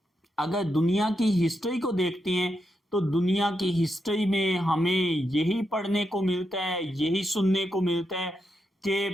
अगर दुनिया की हिस्ट्री को देखते हैं तो दुनिया की हिस्ट्री में हमें यही पढ़ने को मिलता है, यही सुनने को मिलता है कि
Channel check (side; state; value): both; normal; correlation 0.84